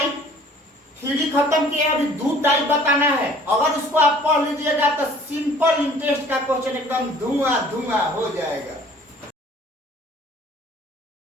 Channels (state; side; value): normal; both; correlation 0.53